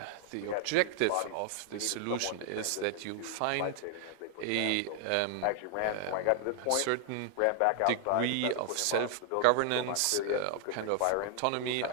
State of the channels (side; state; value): both; different; correlation 0.00